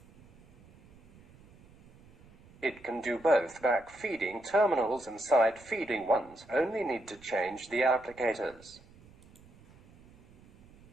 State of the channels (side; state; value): right; noise; rumble, 25 dB below the sound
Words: It can do both back feeding terminals and side feeding ones, only need to change the applicators.